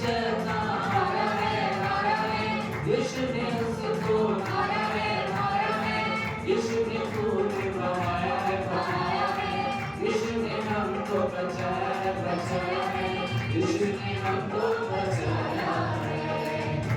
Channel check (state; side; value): identical; both; correlation 1.00